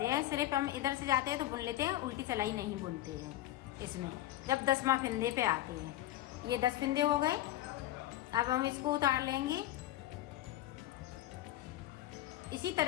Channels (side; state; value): right; quieter; 14.6 dB